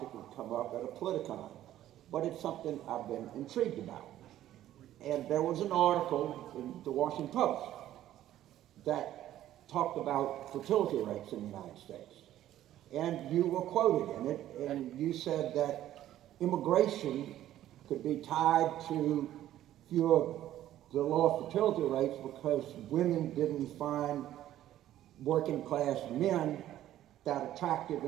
would come up at a Politicon, but it's something I've been intrigued about. And there was an article in the Washington Post that talked about fertility rates in the United States. And you were quoted in it, and you said that immigration could be tied to the low fertility rates because women didn't find working class men that attractive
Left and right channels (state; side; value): quieter; left; 12.9 dB